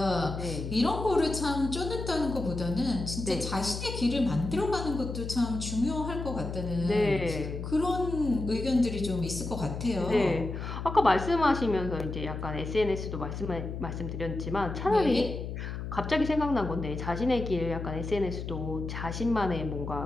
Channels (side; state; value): left; noise; hum, 6 dB below the sound